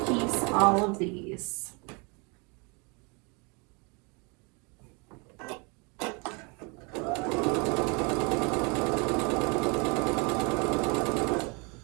piece all of these.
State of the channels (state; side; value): quieter; left; 31.5 dB